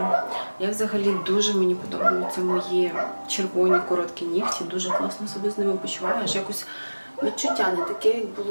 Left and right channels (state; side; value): inverted; both; correlation -1.00